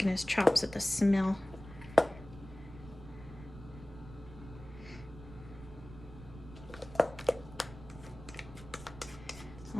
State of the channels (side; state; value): right; noise; rumble, 16 dB below the sound